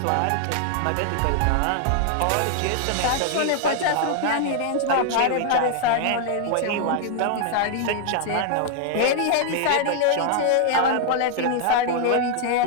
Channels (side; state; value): both; different; correlation 0.00